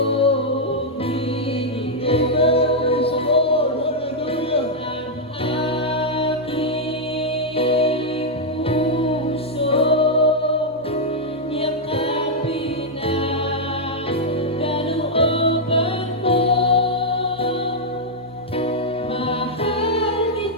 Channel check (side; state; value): both; normal; correlation -0.03